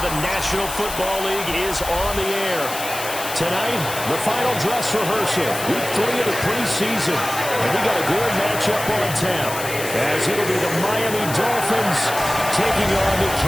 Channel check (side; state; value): left; noise; hiss, 8 dB below the sound